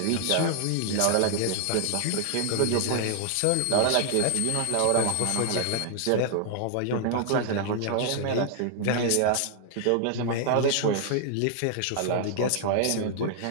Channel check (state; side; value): different; both; correlation -0.01